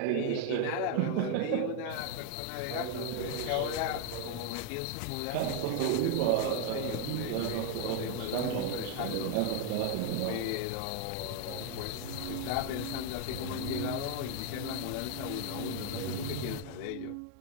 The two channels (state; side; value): different; both; correlation 0.01